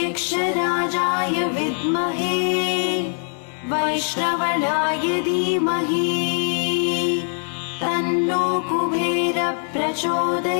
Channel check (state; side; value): silent; right; digital silence